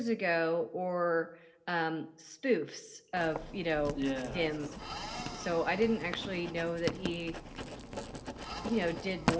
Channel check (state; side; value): identical; both; correlation 1.00